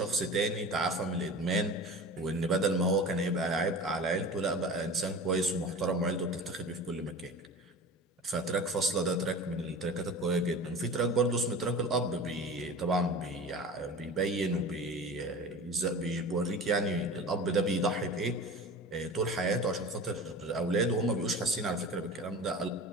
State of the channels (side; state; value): both; normal; correlation 0.35